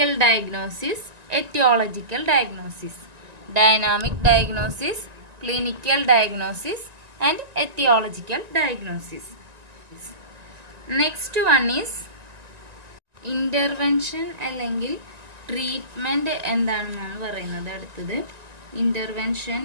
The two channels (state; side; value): late; left; 1.9 ms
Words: diagnosis, aetiological diagnosis. Dynamic diagnosis, clinical diagnosis and aetiological diagnosis. Next one is intervention അല്ലെങ്കിൽ treatment എന്താണെന്നാണ് പറയുന്നത്. അടുത്തത് intervention